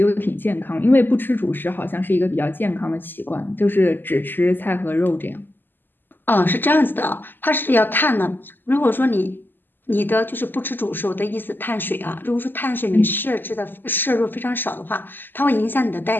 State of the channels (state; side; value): late; right; 0.093 ms